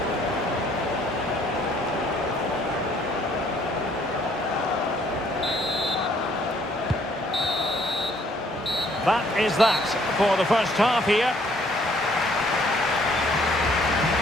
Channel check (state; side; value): normal; both; correlation 0.63